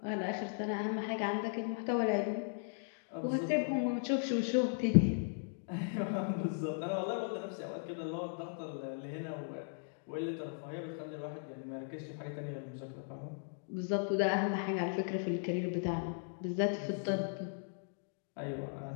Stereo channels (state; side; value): silent; right; digital silence